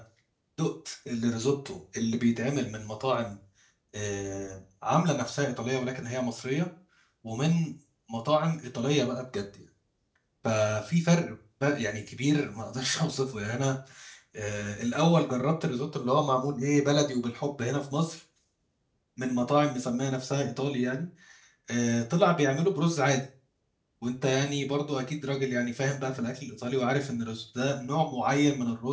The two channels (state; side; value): identical; both; correlation 1.00